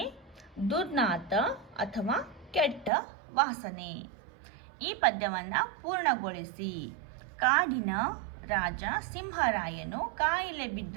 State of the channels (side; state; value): left; drops out; at 2.9 s